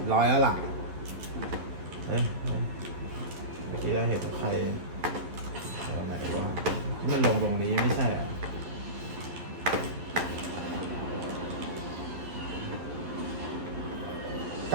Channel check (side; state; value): left; late; 11 ms